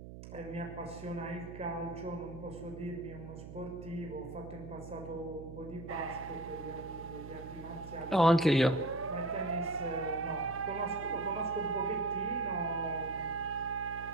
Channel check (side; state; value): right; noise; hum, 12 dB below the sound